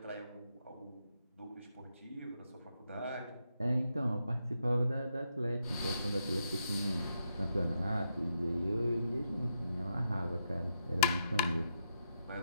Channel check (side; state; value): both; inverted; correlation -0.82